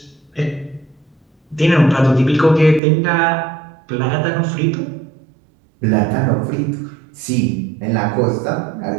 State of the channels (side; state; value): left; drops out; at 2.8 s